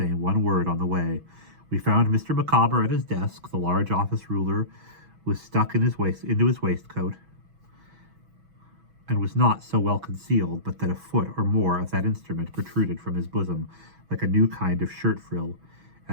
one word on the way. We found Mr. Micawber at his desk. The large office ruler was stuck into his waistcoat, and was not so well concealed but that a foot or more of that instrument protruded from his bosom like a new kind of shirt frill.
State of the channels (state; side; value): late; left; 6.1 ms